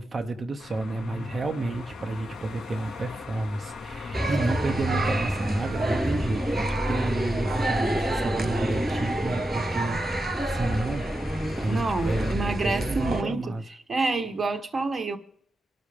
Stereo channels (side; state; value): both; normal; correlation 0.89